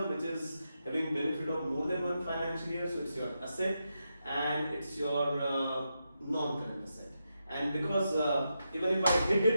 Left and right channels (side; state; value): both; inverted; correlation -0.86